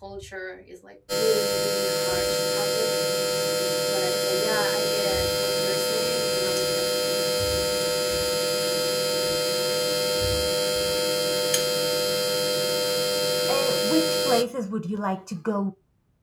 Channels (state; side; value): identical; both; correlation 1.00